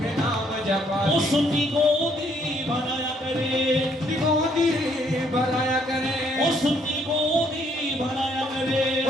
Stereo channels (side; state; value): both; normal; correlation 0.68